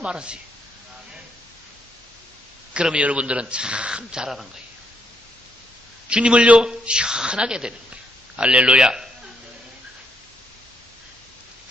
그러면 여러분들은 참 잘하는 거예요. 주님을요, 시원하게 되는 거예요. 할렐루야.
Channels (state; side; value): normal; both; correlation 0.75